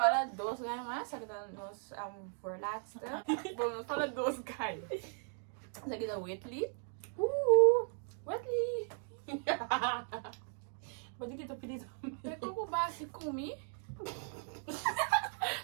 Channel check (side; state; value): left; silent; 53 dB below the other